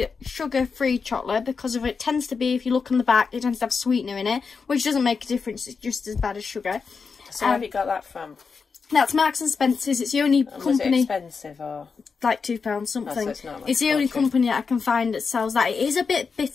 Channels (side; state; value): right; quieter; 5.2 dB